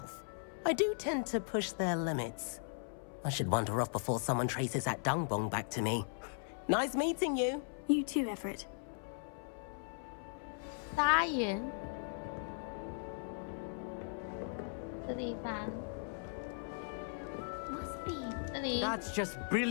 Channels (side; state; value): right; silent; 52 dB below the other